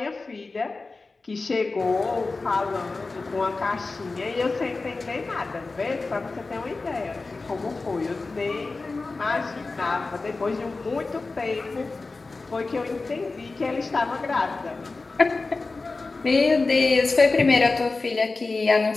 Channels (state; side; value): quieter; right; 3.7 dB